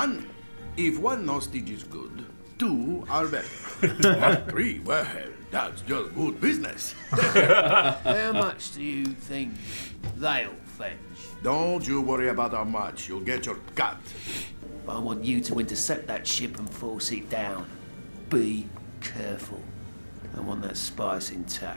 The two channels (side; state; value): both; inverted; correlation -1.00